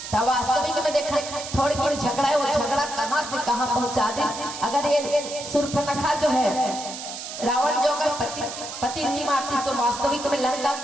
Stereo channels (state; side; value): noise; right; hiss, 9 dB below the sound